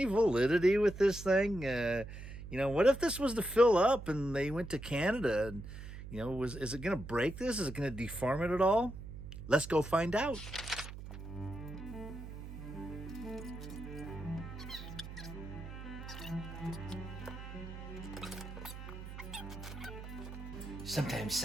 validity with this thing? What if this was to fill up and they went to Canada and, is it going to break this? Is it going to deform it at all? Let's go find out. Sometimes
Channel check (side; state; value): right; noise; hum, 11 dB below the sound